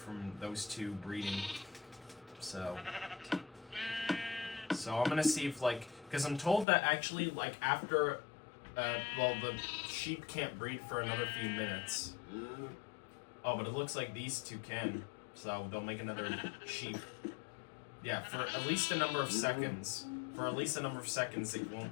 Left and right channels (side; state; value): right; drops out; at 6.7 s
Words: those 2 breeding. So So I'm gonna see if, like, because I'm told that actually, like, after, well, the sheep can't breed for another few minutes. Oh, but it looks like these two can, so they'll make another sheep. Yeah, for at least a number of seconds. For at least a number of seconds, it won't